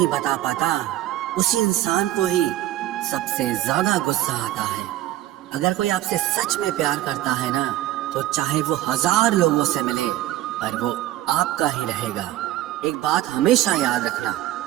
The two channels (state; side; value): quieter; left; 14.4 dB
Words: बता पाता, उसी इंसान को ही सबसे ज्यादा गुस्सा आता है। अगर कोई आपसे सच में प्यार करता है ना, तो चाहे वो 1000 लोगों से मिले पर वो आपका ही रहेगा। एक बात हमेशा याद रखना,